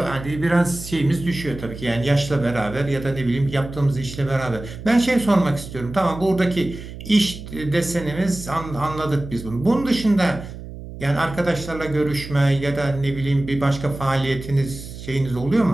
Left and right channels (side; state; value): right; noise; hum, 12 dB below the sound